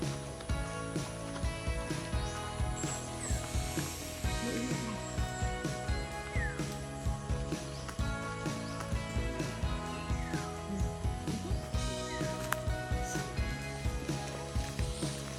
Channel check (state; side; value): identical; both; correlation 1.00